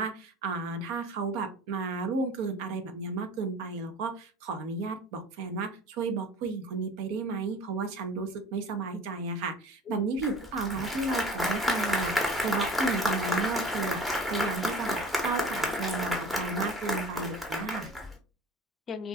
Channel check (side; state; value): both; normal; correlation 0.42